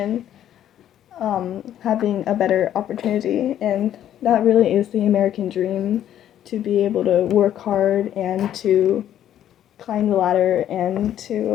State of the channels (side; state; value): right; quieter; 11.1 dB